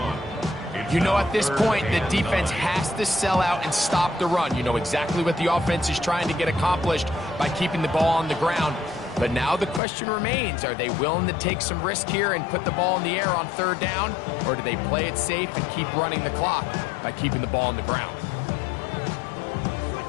You know, at this point, the defense has to sell out and stop the run. You know exactly what the offense is trying to get accomplished by keeping the ball on the ground. But now the question remains, are they willing to take some risk here and put the ball in the air on 3rd down? Or do they play it safe and keep running the clock by keeping the ball on the ground?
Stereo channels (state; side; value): drops out; right; at 9.8 s